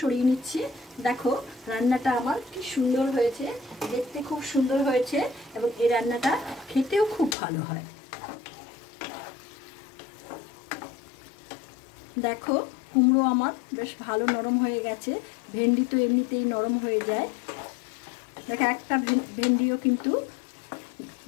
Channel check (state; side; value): drops out; right; at 7.4 s